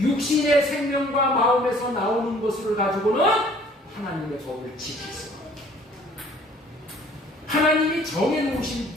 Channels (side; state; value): both; normal; correlation 0.55